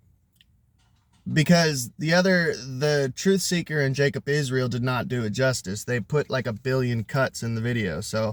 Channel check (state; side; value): identical; both; correlation 1.00